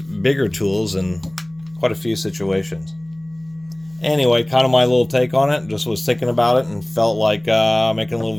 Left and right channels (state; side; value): noise; right; hum, 28 dB below the sound